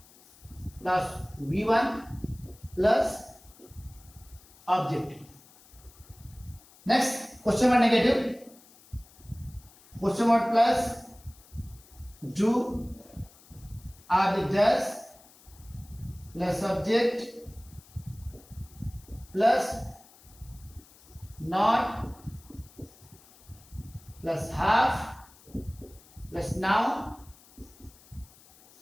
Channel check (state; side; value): noise; left; hiss, 25 dB below the sound